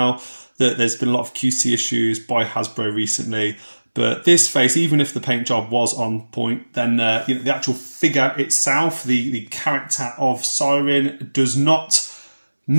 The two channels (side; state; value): both; inverted; correlation -1.00